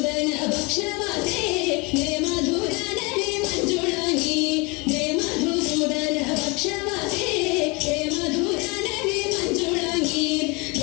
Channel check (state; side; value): quieter; right; 28.2 dB